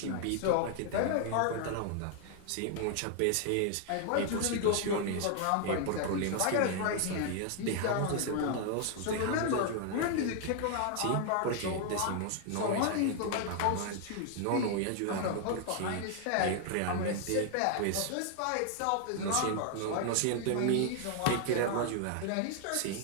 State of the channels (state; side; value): different; both; correlation 0.00